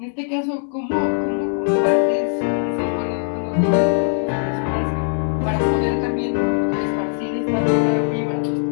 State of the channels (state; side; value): silent; right; digital silence